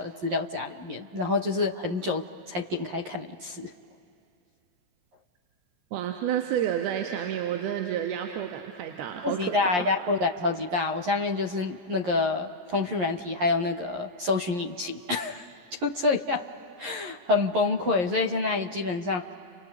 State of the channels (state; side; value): late; left; 11 ms